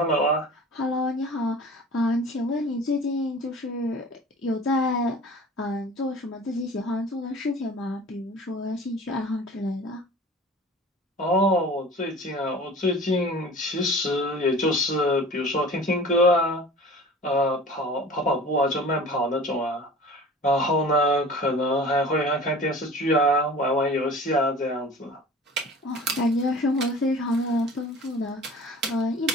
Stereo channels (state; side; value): normal; both; correlation 0.42